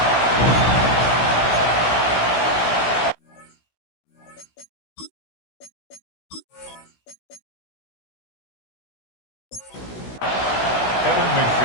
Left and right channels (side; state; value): right; late; 16 ms